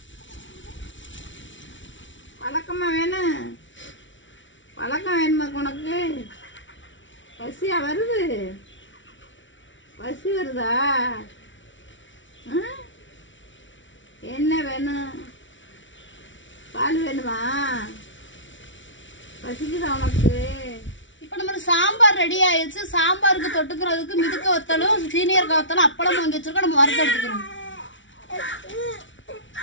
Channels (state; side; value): late; right; 0.55 ms